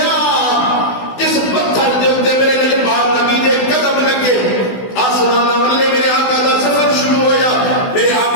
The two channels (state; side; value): late; right; 16 ms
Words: جس پتھر دے اوپر میرے لجپال نبی دے قدم لگے آسمان والے میرے آقا دا سفر شروع ہویا. میرے